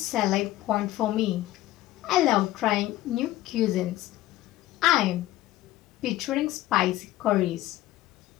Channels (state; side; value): quieter; right; 15.6 dB